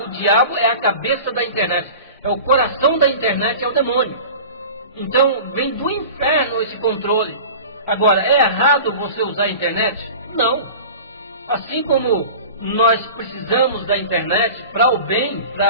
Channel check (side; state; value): both; inverted; correlation -0.38